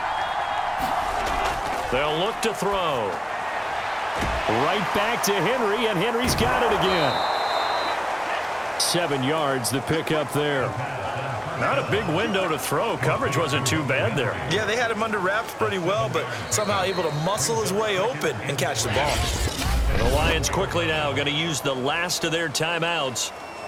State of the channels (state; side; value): identical; both; correlation 1.00